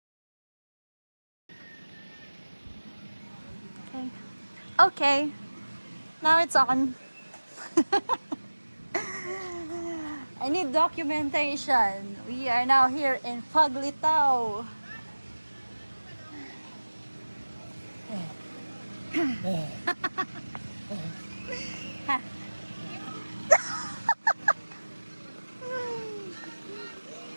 Okay. Now it's on. I need documentation. We are now here in Paglitao.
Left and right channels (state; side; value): inverted; both; correlation -1.00